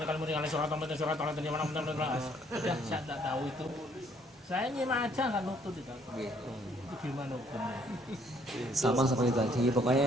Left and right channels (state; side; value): normal; both; correlation 0.65